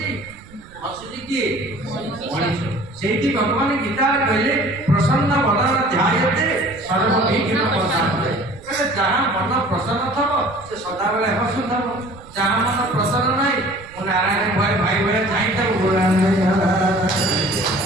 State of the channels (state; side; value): noise; right; rumble, 22 dB below the sound